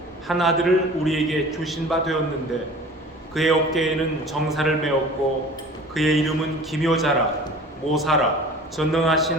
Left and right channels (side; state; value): both; normal; correlation 0.43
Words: 한 아들을 우리에게 주신 바 되었는데 그의 어깨에는 정사를 메었고 그의 이름은 기묘자라, 모사라,